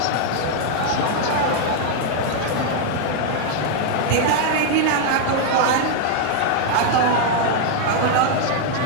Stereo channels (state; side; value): different; both; correlation 0.00